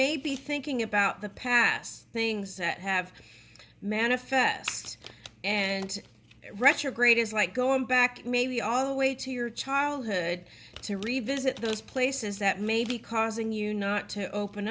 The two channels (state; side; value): identical; both; correlation 1.00